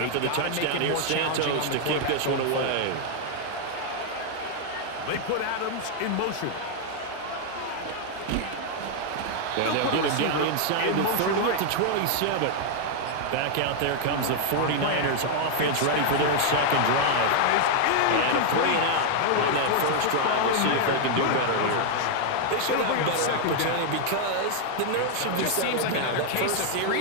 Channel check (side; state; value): both; different; correlation 0.00